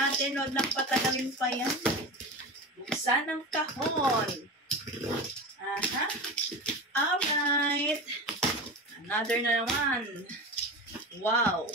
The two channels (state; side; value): normal; both; correlation 0.27